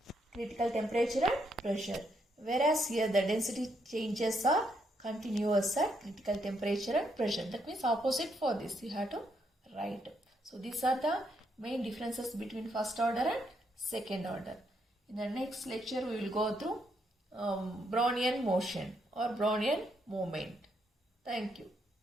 critical temperature and pressure. Whereas here the density changes are continuous at critical temperature and pressure. That means opposite for this you have to write. So these are the main differences between first order and second order. In the next lecture we will go through Brownian motion or Brownian movement. Thank you.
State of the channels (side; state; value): both; normal; correlation 0.76